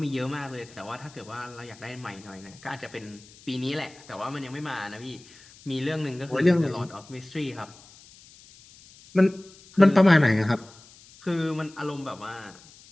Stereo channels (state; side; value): noise; left; hiss, 23 dB below the sound